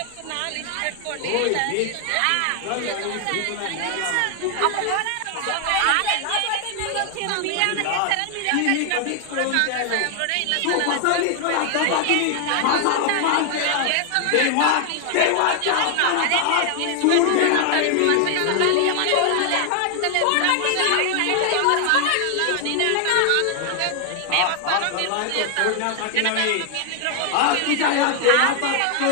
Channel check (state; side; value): different; both; correlation 0.00